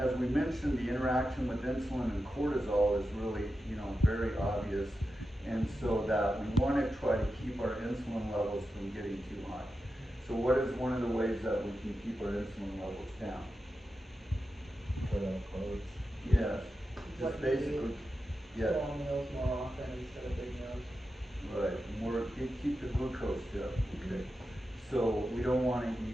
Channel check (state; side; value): normal; both; correlation 0.90